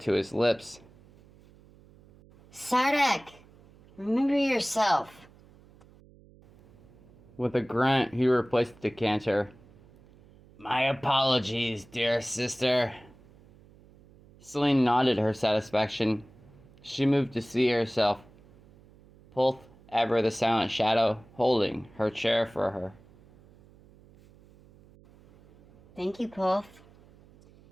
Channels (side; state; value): right; noise; hum, 26 dB below the sound